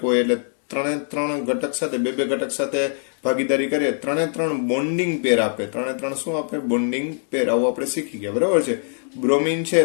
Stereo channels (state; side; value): silent; right; 60 dB below the other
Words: હોય એટલે 3 ઘટક સાથે 2 ઘટક સાથે ભાગીદારી કરીએ 3 બોન્ડિંગ પેર આપે. 3 શું આપે? બોન્ડિંગ પેર. આવું આપણે શીખી ગયા. બરાબર છે. બ્રોમિન છે